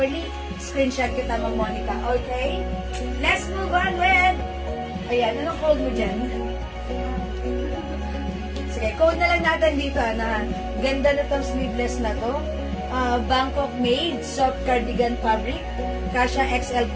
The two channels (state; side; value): identical; both; correlation 1.00